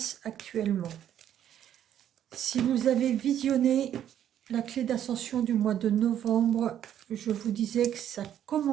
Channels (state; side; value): quieter; left; 10.4 dB